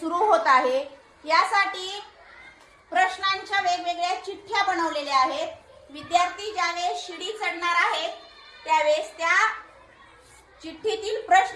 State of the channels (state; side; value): identical; both; correlation 1.00